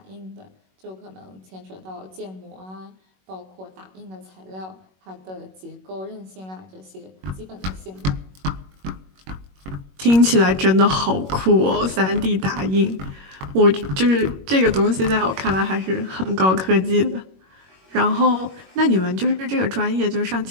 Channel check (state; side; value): late; left; 21 ms